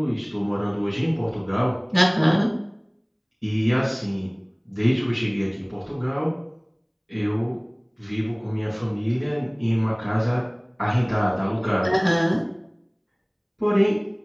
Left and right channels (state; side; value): identical; both; correlation 1.00